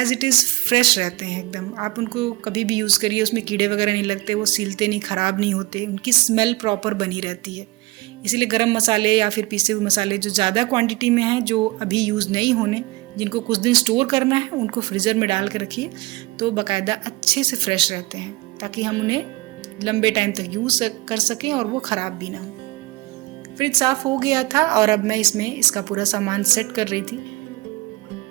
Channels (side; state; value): left; quieter; 21.8 dB